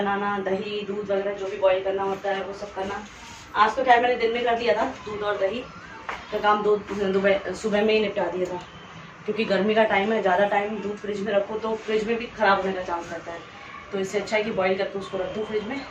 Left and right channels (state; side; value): identical; both; correlation 1.00